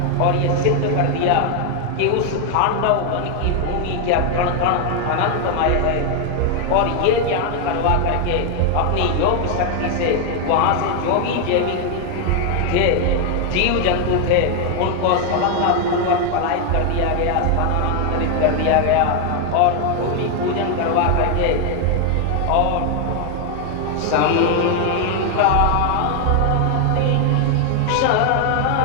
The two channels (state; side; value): different; both; correlation 0.01